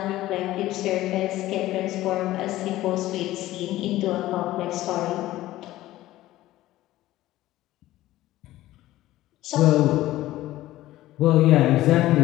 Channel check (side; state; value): right; quieter; 15.7 dB